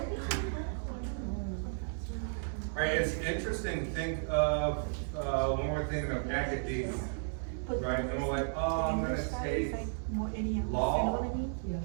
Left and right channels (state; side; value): silent; left; 55 dB below the other